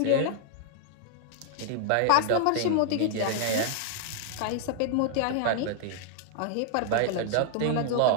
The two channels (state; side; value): different; both; correlation -0.01